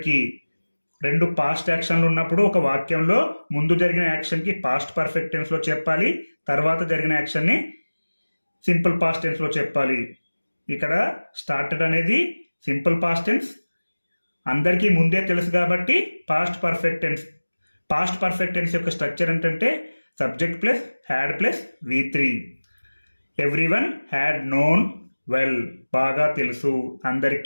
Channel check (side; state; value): both; inverted; correlation -1.00